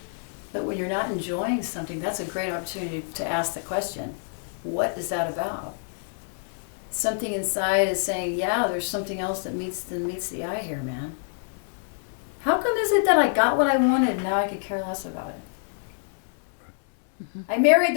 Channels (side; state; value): right; silent; digital silence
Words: But when you're not enjoying something, that's a great opportunity to ask the question, what is that about? Something inside is saying, yeah, there's something else that meets the eye here, man. How come is it that I got what I wanted and now I could care less about it? Mm-hmm. I married